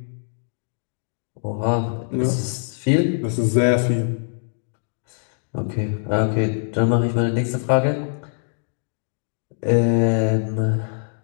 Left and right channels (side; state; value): right; silent; digital silence